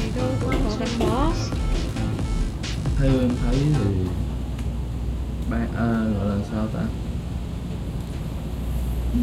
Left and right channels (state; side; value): identical; both; correlation 1.00